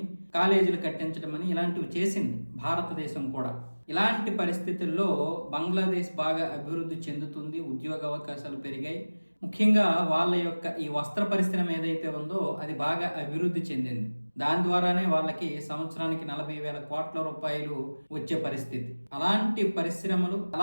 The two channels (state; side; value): inverted; both; correlation -1.00